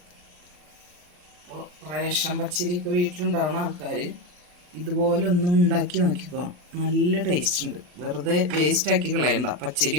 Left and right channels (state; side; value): late; left; 40 ms